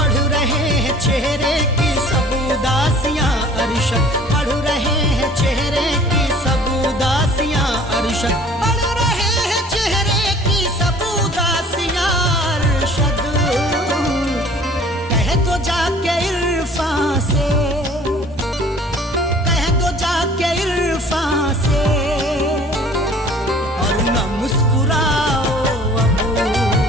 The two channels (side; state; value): both; normal; correlation 0.50